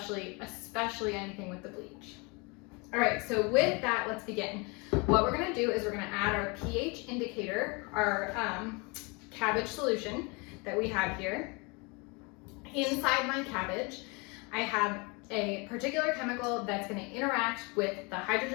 anything with the bleach. All right, so with that, let's begin. What we're gonna do is we're gonna add our pH indicator, our cabbage solution that we have here. Inside my cabbage, I have a particular chemical that's gonna interact with the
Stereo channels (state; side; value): quieter; right; 29.4 dB